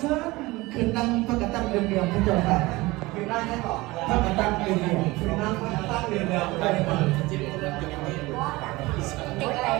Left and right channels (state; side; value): quieter; left; 21.1 dB